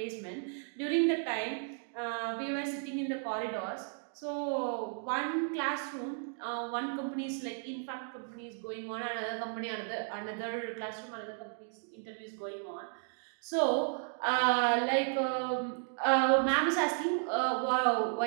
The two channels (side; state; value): left; silent; 55 dB below the other